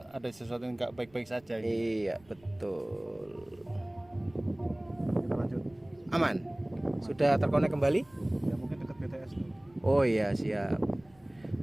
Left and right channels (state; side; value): noise; right; rumble, 29 dB below the sound